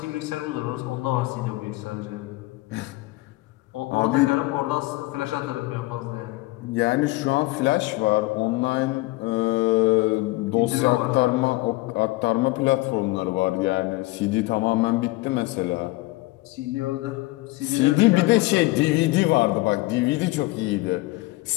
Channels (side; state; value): right; quieter; 20.8 dB